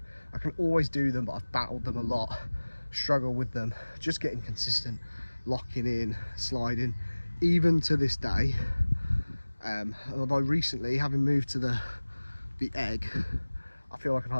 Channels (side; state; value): both; inverted; correlation -1.00